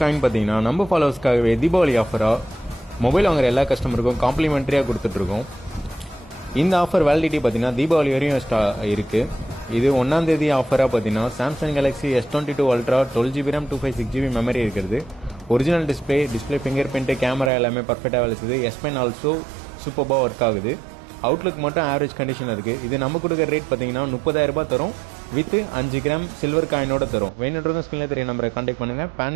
காயின் பார்த்தீங்கன்னா நம்ம ஃபாலோவர்ஸ்க்காகவே தீபாவளி ஆஃபராக மொபைல் வாங்குற எல்லா கஸ்டமருக்கும் காம்ப்ளிமெண்ட்ரியாக கொடுத்துட்ருக்கோம். இந்த ஆஃபர் வேலிடிட்டி பார்த்தீங்கன்னா தீபாவளி வரையும் இருக்குது. இது 1ஆம் தேதி ஆஃபராக பார்த்தீங்கன்னா Samsung Galaxy S22 ultra 12GB RAM 256GB memory இருக்கிறது. Original display fingerprint camera எல்லாமே பர்ஃபெக்டாக வேலை செய்யுது. S Pen ஆல்சோ சூப்பராக ஒர்க் ஆகுது. அவுட்லுக் மட்டும் ஆவரேஜ் கண்டிஷன் இருக்குது. இது நம்ம கொடுக்குற ரேட் பார்த்தீங்கன்னா 30,000 தரும் வித் 5 கிராம் சில்வர் காயினோட தரும். வேணுன்றதும் ஸ்கிரீனில் தெரிய நம்பரை கான்டாக்ட் பண்ணுங்கள். பேன்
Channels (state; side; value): drops out; left; at 17.5 s